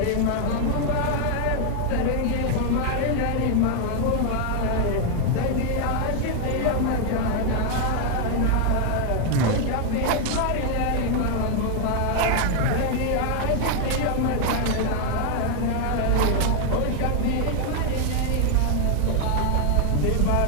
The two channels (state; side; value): different; both; correlation 0.00